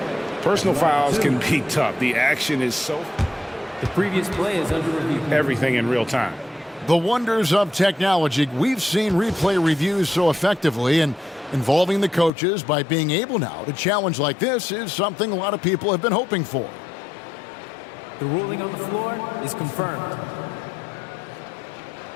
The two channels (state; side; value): drops out; right; at 12.3 s